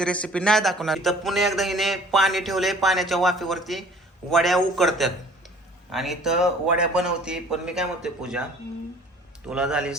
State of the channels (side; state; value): both; normal; correlation 0.51